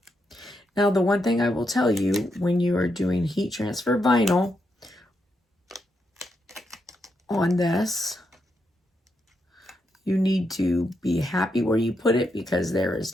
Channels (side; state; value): both; normal; correlation 0.82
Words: Now, the one thing I will tell you when you are doing heat transfer vinyl on this, you need to be happy where you put it because there